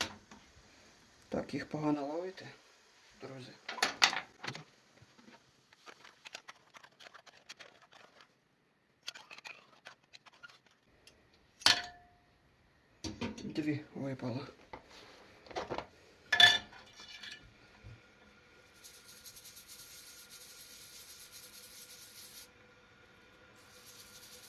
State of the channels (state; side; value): identical; both; correlation 1.00